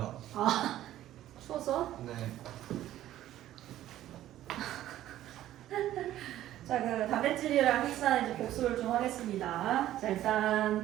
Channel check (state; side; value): quieter; left; 13.3 dB